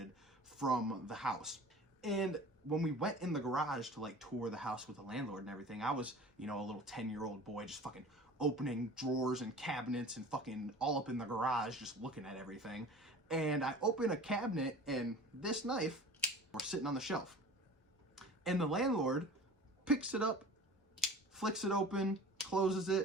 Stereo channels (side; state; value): both; normal; correlation 0.40